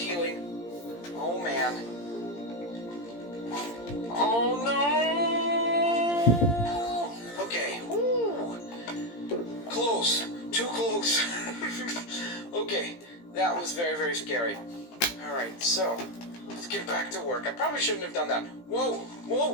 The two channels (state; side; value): late; right; 17 ms